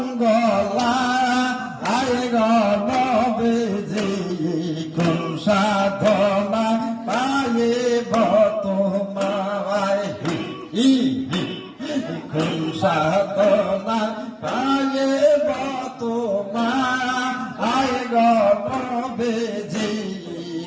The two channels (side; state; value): both; identical; correlation 1.00